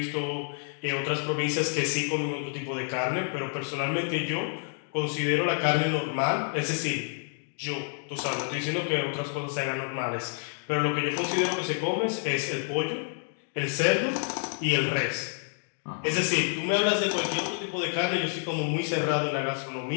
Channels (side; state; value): right; silent; 59 dB below the other